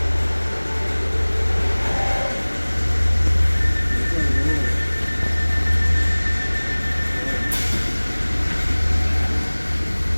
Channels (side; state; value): both; inverted; correlation -1.00